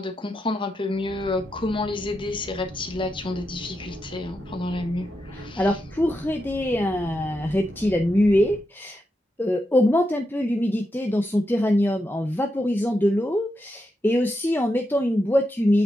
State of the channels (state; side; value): normal; both; correlation 0.85